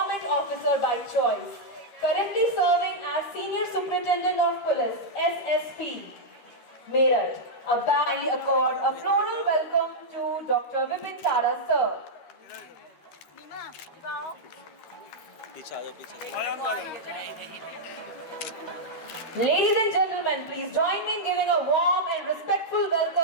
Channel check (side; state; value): right; late; 13 ms